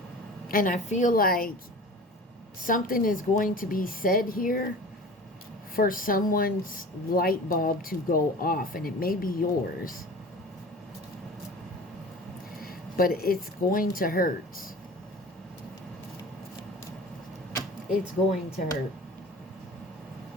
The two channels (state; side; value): normal; both; correlation 0.39